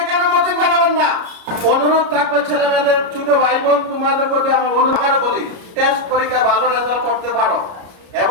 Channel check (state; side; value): late; left; 33 ms